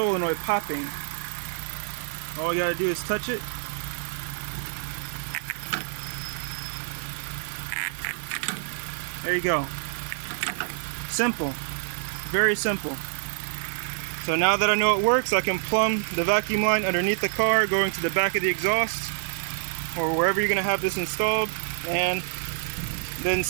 popping. All you gotta do is touch it. There you go. Simple. Very simple. So now that I know it works, I can plumb the vacuum line underneath the car, going to the back of the exhaust, or wherever you're gonna have this installed, and then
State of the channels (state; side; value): silent; left; digital silence